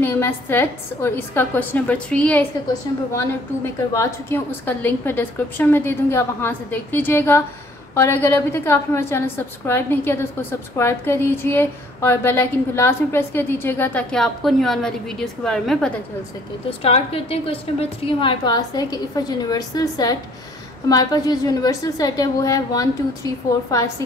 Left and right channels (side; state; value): both; normal; correlation 0.59